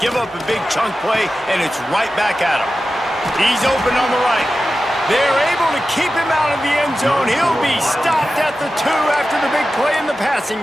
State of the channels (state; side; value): normal; both; correlation 0.93